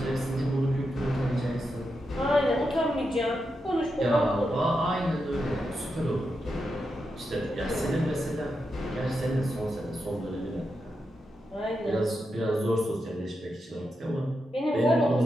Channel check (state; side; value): normal; both; correlation 0.86